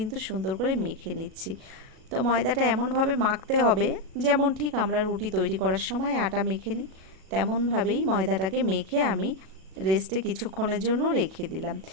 সুন্দর করে মেখে নিচ্ছি। তো ময়দাটা এমনভাবে মাখতে হবে যেমন ঠিক আমরা রুটি তৈরি করার সময় আটা মেখে নিই, তেমনভাবেই ময়দাটাকে মেখে আমি রেস্টে কিছুক্ষণের জন্য রেখে দিলাম।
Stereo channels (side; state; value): left; late; 37 ms